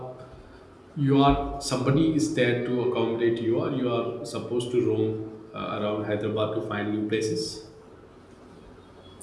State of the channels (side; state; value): both; identical; correlation 1.00